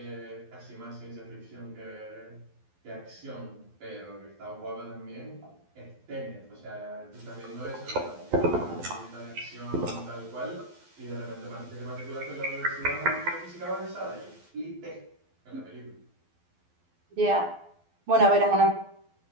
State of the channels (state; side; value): late; left; 12 ms